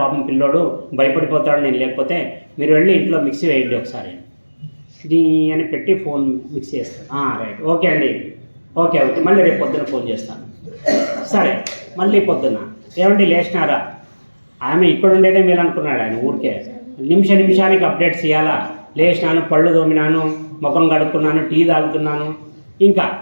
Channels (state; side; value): inverted; both; correlation -1.00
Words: పాపం పిల్లోడు భయపడిపోతాడు నేను లేకపోతే, మీరు వెళ్ళి ఇంట్లో మిక్సీ వేయండి ఒకసారి ఇది అని పెట్టి ఫోన్ మిక్సీ వేస్తాను. రైట్, ఓకే అండి, ఓకే ఓకే, మళ్ళీ రేపు పొద్దున్న ఫోన్ చేస్తాను. సరే, మళ్ళీ పొద్దున్న ఏమండి లేచినారా? ఆమె ఇక్కడ ఉండేదే మీరు అనుకున్నాడు ఆయన, ఊరికే నిమిషానికి అప్డేట్స్ ఇవ్వాలా. లేచినాను, పళ్ళు తోమినాను, ముఖం కడుక్కున్నాను, టీ తాగుతున్నాను, ఇంకా